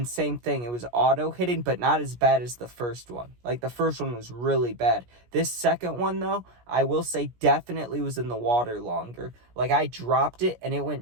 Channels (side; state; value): left; late; 17 ms